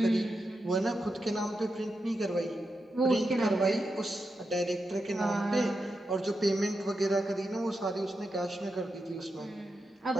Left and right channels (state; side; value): normal; both; correlation 0.87